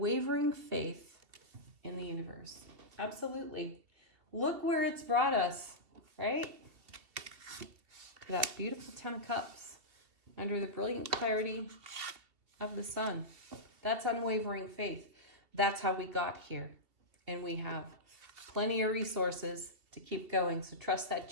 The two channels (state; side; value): late; left; 2.7 ms